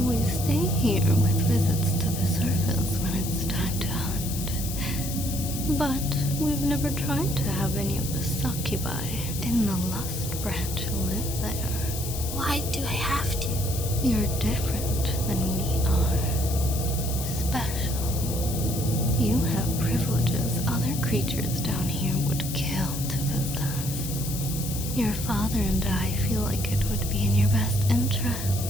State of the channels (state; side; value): noise; left; hiss, 7 dB below the sound